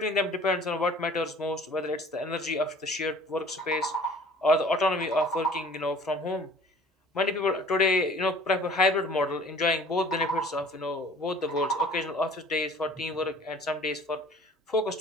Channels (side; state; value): both; normal; correlation 0.49